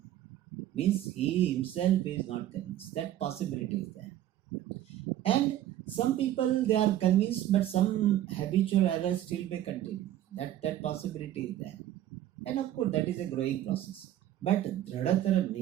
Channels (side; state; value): left; quieter; 12.6 dB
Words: Means he himself is not convinced. That possibility is there. And some people, they are convinced, but some habitual errors still may continue. That possibility is there. And of course, that is a growing process. But Dradhatara